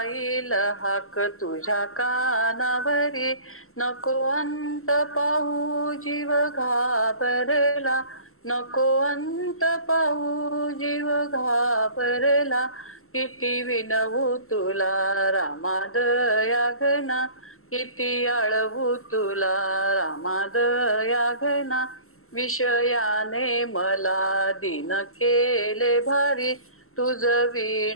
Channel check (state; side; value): late; right; 0.62 ms